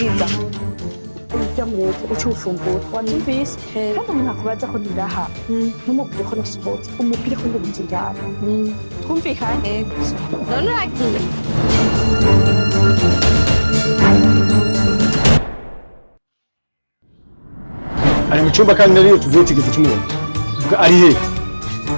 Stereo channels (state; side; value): inverted; both; correlation -1.00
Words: ujya mu leta uca ufumbura wanyumvise kandi umuntu akubaza ko ndaha ntumubwire ko nasohotse umubwire ko ndi mu nzira twumvikanye none uragiye ari mu cyumba kandi nariyo tuvuye tigeze tumubona vuga ari he